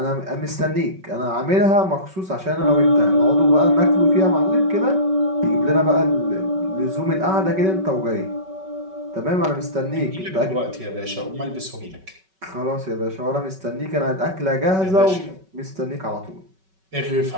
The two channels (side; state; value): left; late; 5.3 ms